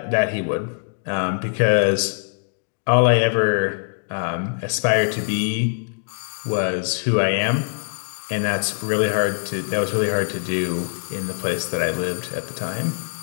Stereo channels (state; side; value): silent; right; digital silence